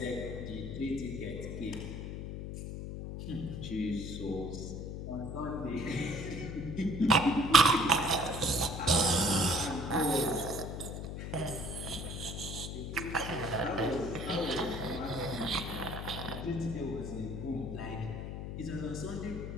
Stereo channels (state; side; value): noise; left; hum, 6 dB below the sound